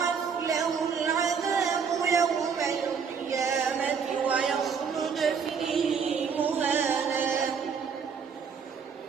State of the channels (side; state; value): left; quieter; 6.2 dB